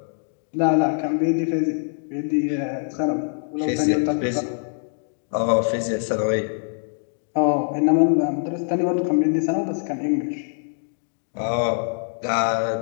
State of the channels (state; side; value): silent; right; 63 dB below the other